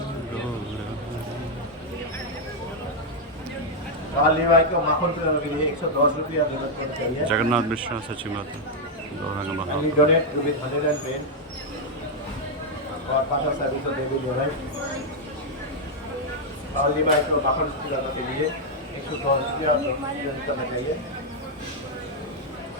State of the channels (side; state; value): both; normal; correlation -0.01